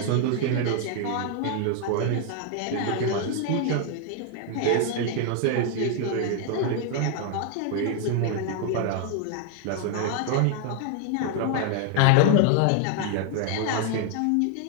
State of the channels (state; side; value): different; both; correlation 0.00